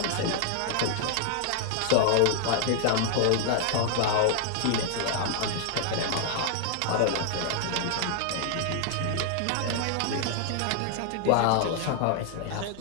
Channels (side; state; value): both; different; correlation 0.00